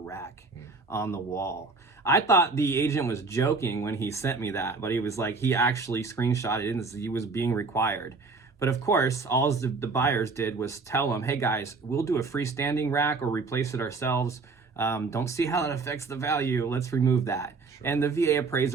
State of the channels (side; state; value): left; quieter; 4.1 dB